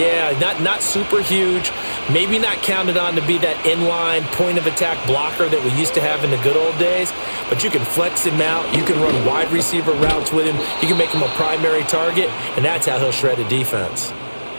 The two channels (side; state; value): both; inverted; correlation -1.00